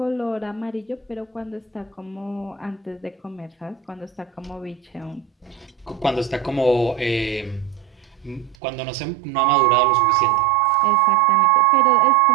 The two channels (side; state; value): left; drops out; at 8.6 s